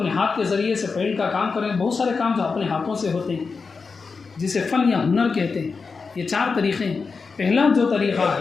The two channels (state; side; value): quieter; right; 4.8 dB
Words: ہاتھ کے ذریعے سے پینٹ کا کام کر رہے ہیں، بہت سارے کام جو اپنے ہاتھوں سے ہوتے ہیں جسے فن یا ہنر کہتے ہیں۔ یہ 4 طریقے ہیں۔ پہلا جو طریقہ